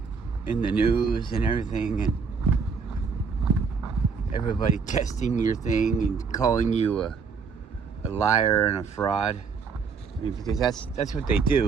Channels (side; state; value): left; quieter; 5.5 dB